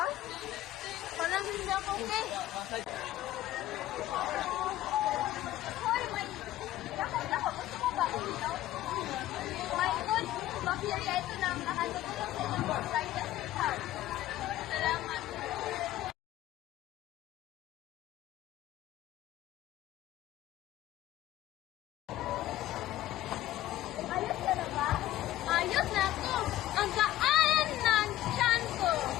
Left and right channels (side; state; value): right; quieter; 14.4 dB